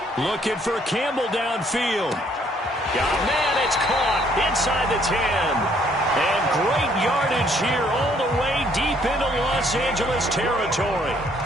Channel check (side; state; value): both; normal; correlation 0.65